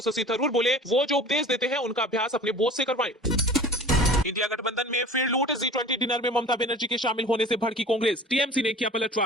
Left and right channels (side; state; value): both; normal; correlation 0.42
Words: शशि थरूर बोले, वो जो उपदेश देते हैं उनका अभ्यास अपने बोझ से करवाएं। इंडिया गठबंधन में फिर लूट, G20 डिनर में ममता बनर्जी के शामिल होने से भड़की कांग्रेस, टीएमसी ने किया